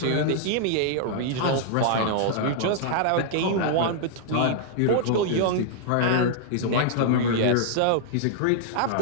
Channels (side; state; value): both; different; correlation -0.01